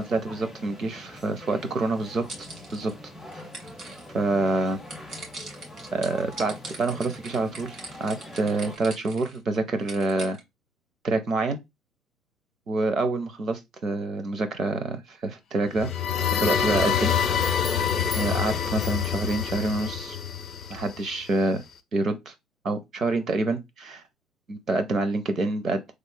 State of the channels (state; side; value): normal; both; correlation 0.66